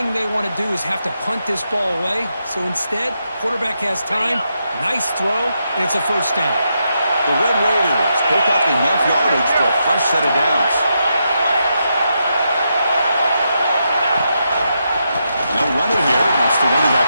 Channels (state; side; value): inverted; both; correlation -0.83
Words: they want to do is have to punt this ball away. So instead, quarterback has time. Nice throw, and it's a first down. The Red Raiders pick up enough yardage for a fresh set of downs. No runner here. That's the running back